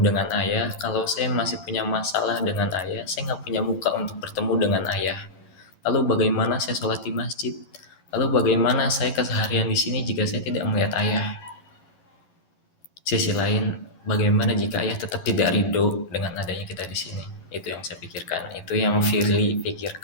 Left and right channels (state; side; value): late; right; 12 ms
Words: ayah. Kalau saya masih punya masalah dengan ayah, saya nggak punya muka untuk bertemu dengan ayah. Lalu bagaimana saya sholat di masjid? Lalu bagaimana saya keseharian di sini jika saya tidak melihat ayah? Sisi lain, bagaimana jika ayah tetap tidak ridho dengan adanya kita di sini? Itu yang saya pikirkan. Itu yang Firly